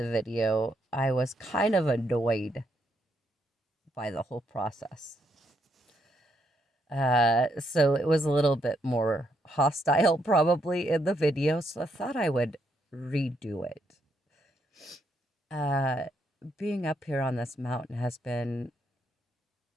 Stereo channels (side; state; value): both; normal; correlation 0.76